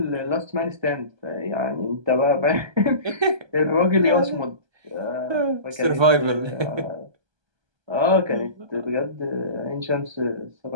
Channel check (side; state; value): left; late; 1.3 ms